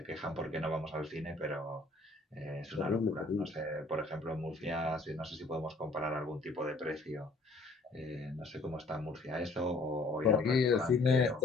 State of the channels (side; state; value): right; quieter; 3.2 dB